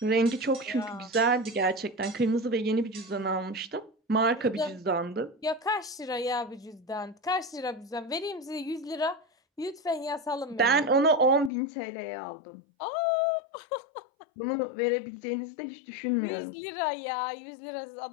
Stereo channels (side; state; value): right; drops out; at 11.5 s